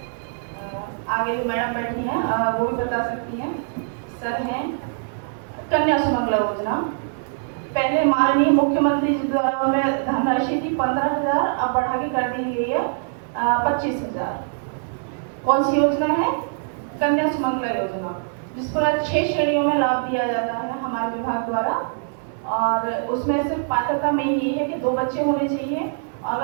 आगे जो मैडम बैठी हैं वो भी बता सकती हैं। सर हैं कन्या सुमंगला योजना, पहले माननीय मुख्यमंत्री जी द्वारा उन्हें धनराशि थी 15,000, अब बढ़ा के कर दी गई है 25,000। कौन सी योजना है? कन्या सुमंगला योजना, जिस पर 6 श्रेणियों में लाभ दिया जाता है हमारे विभाग द्वारा। और उसमें सिर्फ पात्रता में ये है कि 2 बच्चे होने चाहिए,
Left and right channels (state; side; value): silent; left; digital silence